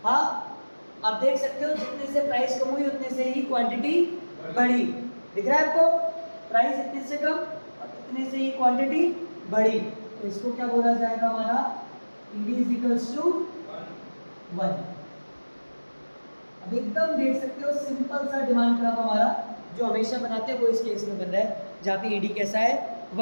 हाँ, आप देख सकते हो जितने से प्राइस कम हुई उतने से ही क्वांटिटी बढ़ी। दिख रहा है आपको? प्राइस इतने से कम और इतने से ही क्वांटिटी बढ़ी, तो इसको क्या बोला जाएगा हमारा? ED is equals to 1। अब एकदम देख सकते हो सिंपल सा डिमांड ग्राफ हमारा जो हमेशा बनाते हैं वो इस केस में बन रहा है, जहाँ पे ईडी कैसा है?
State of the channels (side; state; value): both; inverted; correlation -1.00